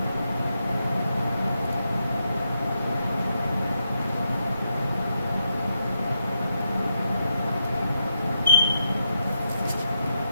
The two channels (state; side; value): inverted; both; correlation -0.83